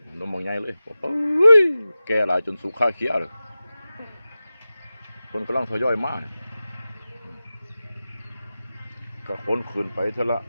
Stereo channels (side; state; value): both; inverted; correlation -0.95